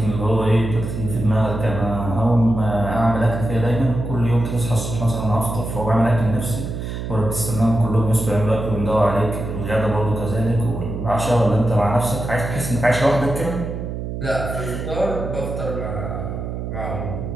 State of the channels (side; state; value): right; noise; hum, 5 dB below the sound